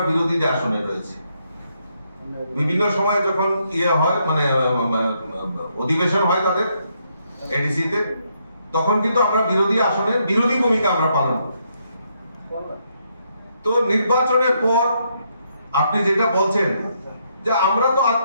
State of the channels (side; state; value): both; inverted; correlation -0.76